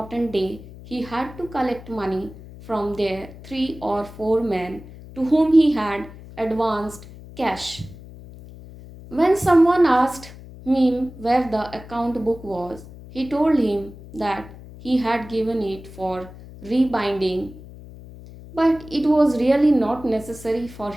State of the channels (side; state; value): left; noise; hum, 17 dB below the sound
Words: day. He had to collect money from their 3 or 4 men to whom he had advanced cash. When someone asked him where the account book was, he told him that he had given it for rebinding, but it was really not necessary for